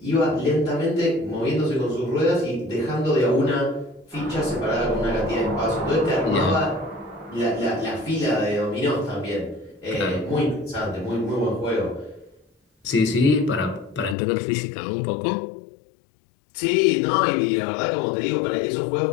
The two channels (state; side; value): drops out; right; at 14.2 s